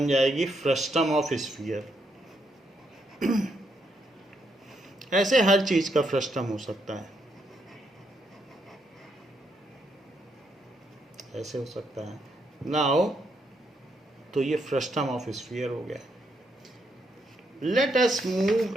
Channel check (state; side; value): normal; both; correlation 0.77